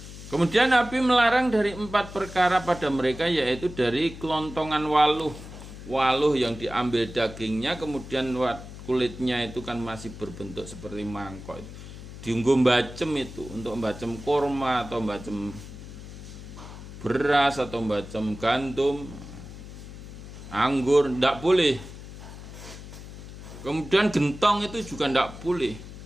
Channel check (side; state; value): left; noise; hum, 13 dB below the sound